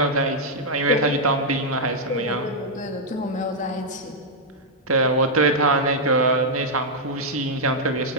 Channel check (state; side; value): normal; both; correlation -0.04